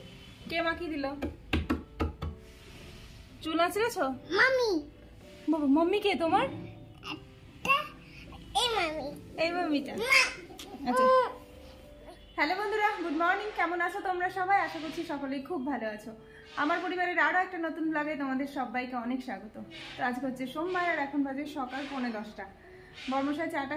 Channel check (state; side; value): identical; both; correlation 1.00